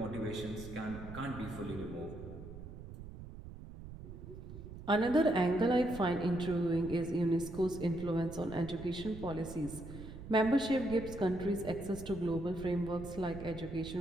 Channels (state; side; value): noise; right; rumble, 12 dB below the sound